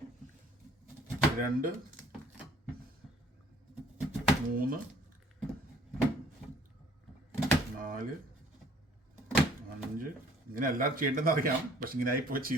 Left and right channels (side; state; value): both; normal; correlation 0.55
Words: 2 3 4 5. ഇങ്ങനെ എല്ലാവരും ചെയ്യേണ്ടതെന്ന് അറിയാം, പക്ഷെ ഇങ്ങനെ ആയിപ്പോ